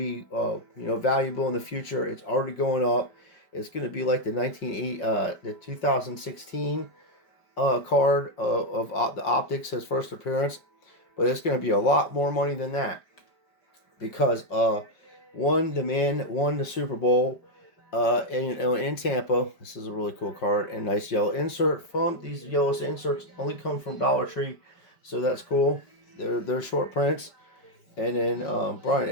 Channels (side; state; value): right; late; 5.1 ms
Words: valuable in the future. It's already going up. It's going to be like the 2016 card of the optics, his first appearance, but it's going to be a lot more money than that, because the man won the Super Bowl in Tampa. This is a really cool card and nice yellow insert. These yellow inserts only come from Dollar Tree, so that's cool. They're short prints. And then Brian